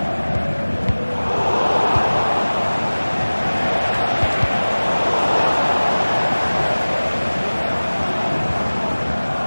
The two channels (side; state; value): both; inverted; correlation -1.00